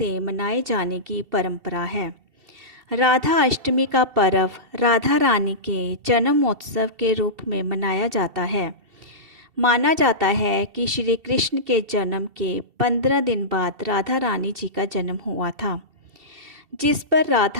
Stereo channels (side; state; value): left; late; 2.7 ms